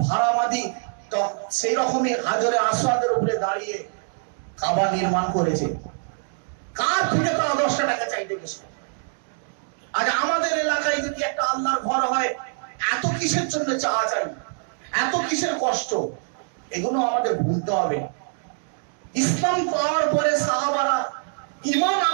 ভাড়ামাদি সেই রকমই হাজরে আসওয়াদের উপরে দাঁড়িয়ে কাবা নির্মাণ করেছে। কার থেকে তারা 10 টাকা চাইতে গেছে? আজ আমাদের এলাকায় যদি একটা আল্লাহর ঘর হয়, এত কিসের জন্য চাওয়া চাই, এত কিসের কষ্ট? এগুলো আমাদের ভুলতে হবে। ইসলাম পাওয়ার পরে সাহাবারা, ঈমান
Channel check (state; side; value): silent; left; digital silence